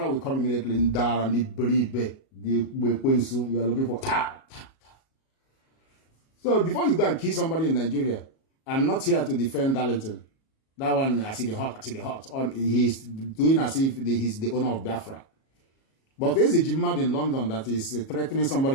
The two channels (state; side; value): late; right; 37 ms